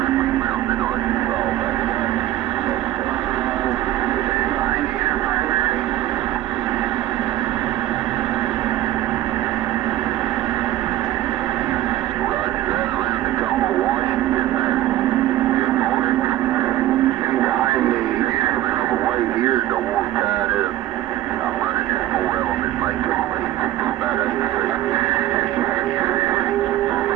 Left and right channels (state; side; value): quieter; left; 13.9 dB